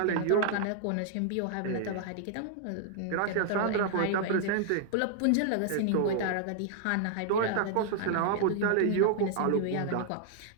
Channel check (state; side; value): different; both; correlation 0.00